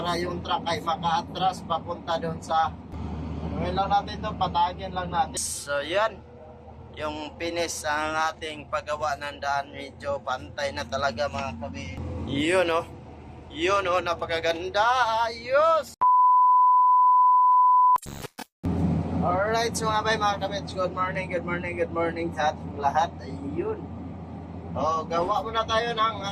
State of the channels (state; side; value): identical; both; correlation 1.00